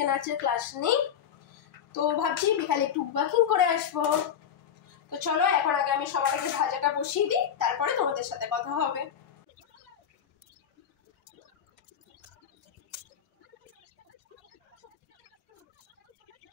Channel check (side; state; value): right; quieter; 8.6 dB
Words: নাচের ক্লাস নেই, তো ভাবছি বিকালে একটু ওয়াকিং করে আসবো। তো চলো এখন আগে আমি সবার আগে ভাজাটা বসিয়ে দিই, তারপরে তোমাদের সাথে কথা হবে।